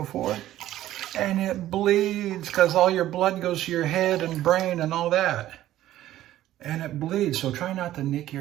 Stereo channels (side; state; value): left; quieter; 13.7 dB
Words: and it bleeds because all your blood goes to your head and brain and all that. And it bleeds, so try not to nick